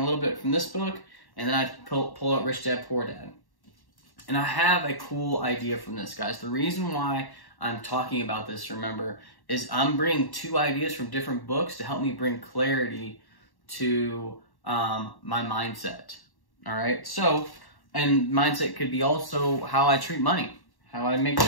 little bit from this book, and then I pull out Rich Dad, Poor Dad. And I have a cool idea from this, guys. The reason why I'm talking about this, remember, is I'm bringing two ideas from different books to help me bring clarity to my mindset. All right? So, and mindset could be also how I treat money, how I make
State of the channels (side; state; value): right; late; 1.1 ms